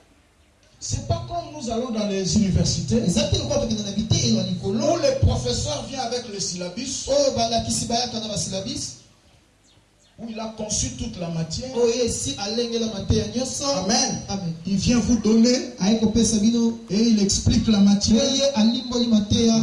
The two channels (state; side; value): identical; both; correlation 1.00